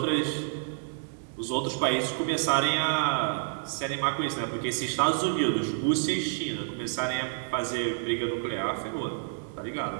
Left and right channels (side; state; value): left; silent; digital silence